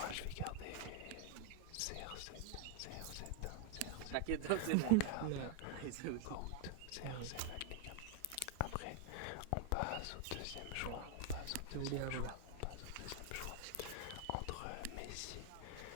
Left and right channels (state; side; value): different; both; correlation 0.01